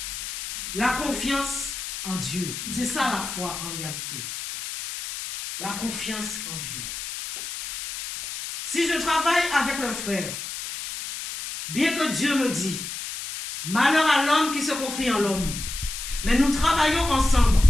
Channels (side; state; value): left; noise; hiss, 7 dB below the sound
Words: La confiance en Dieu. C'est ça la foi en réalité. La confiance en Dieu. Si je travaille avec le frère, bien que Dieu me dit, malheur à l'homme qui se confie en l'homme, mais nous travaillons ensemble.